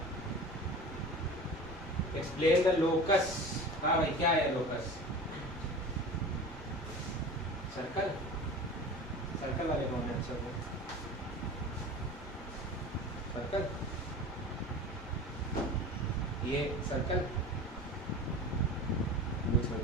Explain the locus. हाँ भाई, क्या है लोकस? सर्कल। सर्कल वाले कौन है? सर्कल, ये सर्कल कुछ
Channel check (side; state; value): both; normal; correlation 0.35